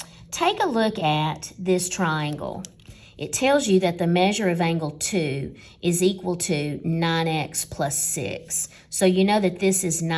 take a look at this triangle. It tells you that the measure of angle 2 is equal to 9x plus 6. So you know that this is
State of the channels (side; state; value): both; identical; correlation 1.00